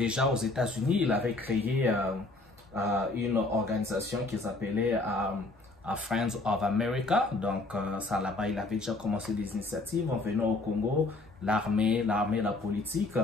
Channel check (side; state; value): right; quieter; 3.1 dB